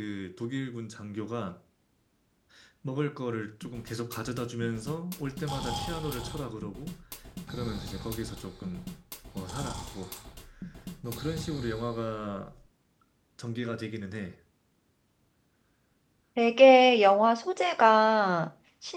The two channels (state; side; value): identical; both; correlation 1.00